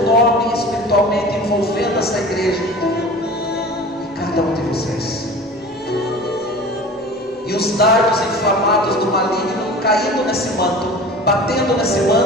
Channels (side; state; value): both; normal; correlation 0.38